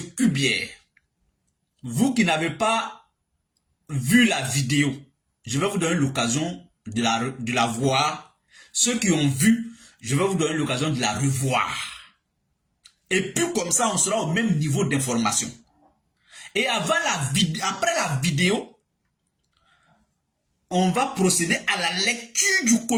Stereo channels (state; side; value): identical; both; correlation 1.00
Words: Kubier. Vous qui n'avez pas vu la vidéo, je vais vous donner l'occasion de la voir. Ceux qui ont vu, je vais vous donner l'occasion de la revoir. Et puis comme ça, on sera au même niveau d'information. Et après la vidéo, on va procéder à la lecture du